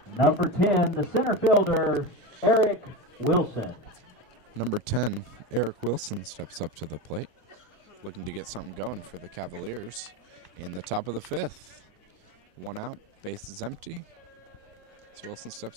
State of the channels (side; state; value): left; late; 1.2 ms